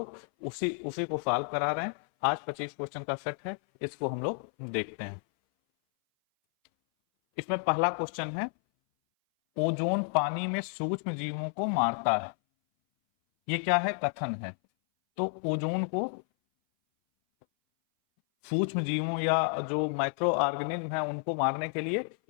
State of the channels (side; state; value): right; silent; 57 dB below the other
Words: उसी उसी को सॉल्व करा रहे हैं। आज 25 क्वेश्चन का सेट है, इसको हम लोग देखते हैं। इसमें पहला क्वेश्चन है, ओजोन पानी में सूक्ष्म जीवों को मारता है। ये क्या है, कथन है। तो ओजोन को सूक्ष्म जीवों या जो माइक्रो ऑर्गेनिज्म है उनको मारने के लिए